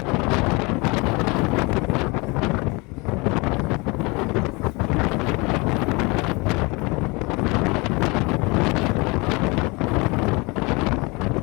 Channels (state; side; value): quieter; right; 27.0 dB